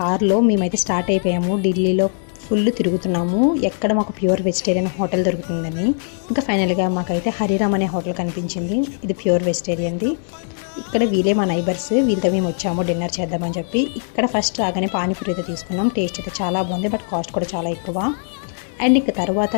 మేమైతే స్టార్ట్ అయిపోయాము. ఢిల్లీలో ఫుల్ తిరుగుతున్నాము, ఎక్కడ మాకు ప్యూర్ వెజిటేరియన్ హోటల్ దొరుకుతుందని. ఇంకా ఫైనల్గా మాకైతే హరిరామ్ అనే హోటల్ కనిపించింది. ఇది ప్యూర్ వెజిటేరియన్ది. ఇక్కడ వీళ్ళే మా నైబర్స్, వీళ్ళతో మేము వచ్చాము డిన్నర్ చేద్దామని చెప్పి. ఇక్కడ ఫస్ట్ రాగానే పానీపూరి అయితే తీసుకున్నాం. టేస్ట్ అయితే చాలా బాగుంది, బట్ కాస్ట్ కూడా చాలా ఎక్కువ. అండ్ ఇక తర్వాత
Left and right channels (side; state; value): right; silent; 66 dB below the other